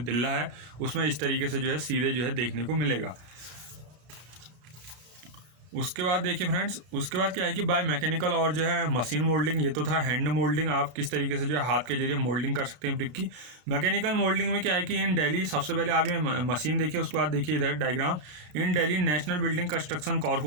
है, उसमें इस तरीके से जो है सीधे जो है देखने को मिलेगा। उसके बाद देखिए फ्रेंड्स, उसके बाद क्या है कि बाय मैकेनिकल और जो है मशीन मोल्डिंग, ये तो था हैंड मोल्डिंग, आप किस तरीके से जो है हाथ के जरिए मोल्डिंग कर सकते हैं ब्रिक की। मैकेनिकल मोल्डिंग में क्या है कि इन दिल्ली, सबसे पहले आप ये मशीन देखिए, उसके बाद देखिए इधर diagram. In Delhi national building construction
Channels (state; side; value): late; left; 33 ms